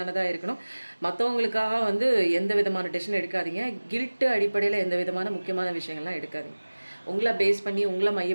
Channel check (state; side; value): inverted; both; correlation -1.00